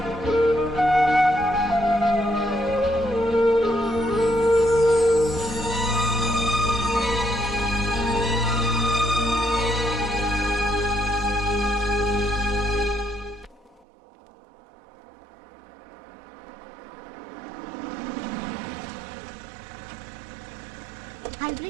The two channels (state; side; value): drops out; left; at 13.9 s